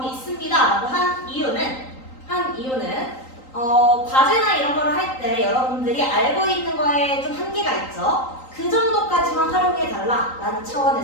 있습니다 라고 한 이유는 과제나 이런 거를 할 때 여러분들이 알고 있는 거에 좀 한계가 있죠. 그 정도까지만 활용해 달라 라는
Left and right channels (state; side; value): late; right; 3.8 ms